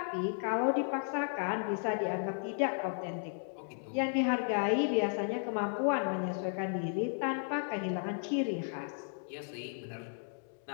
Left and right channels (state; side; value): silent; right; 55 dB below the other